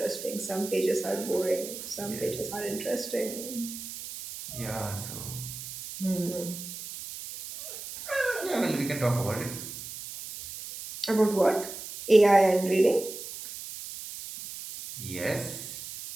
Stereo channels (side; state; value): right; noise; hiss, 10 dB below the sound